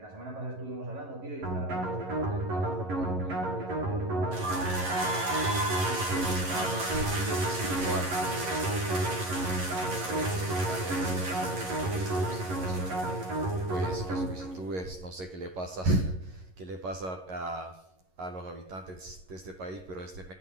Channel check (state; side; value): late; left; 11 ms